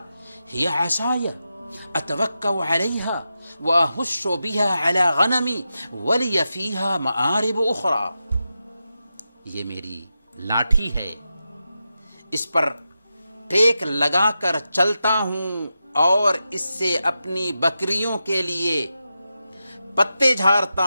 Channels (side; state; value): both; inverted; correlation -0.90